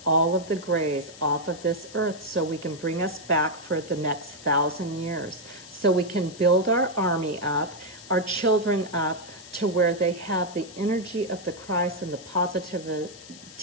all of the Greys off of this earth, so we can bring us back for the next 1,000 years. So we can build our army up, our children up, to where they have the energy of the Christ and the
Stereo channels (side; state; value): left; noise; hiss, 18 dB below the sound